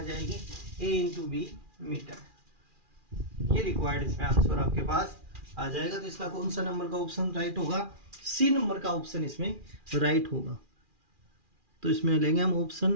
जाएगी, a इंटू बी मीटर। ये रिक्वायर्ड इसमें आंसर आपके पास आ जाएगा। तो इसका कौन सा नंबर का ऑप्शन राइट होगा, सी नंबर का ऑप्शन इसमें राइट होगा। तो इसमें लेंगे हम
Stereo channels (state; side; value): late; left; 2.4 ms